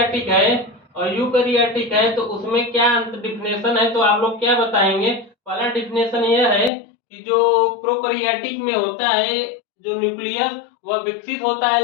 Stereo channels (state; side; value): drops out; right; at 6.7 s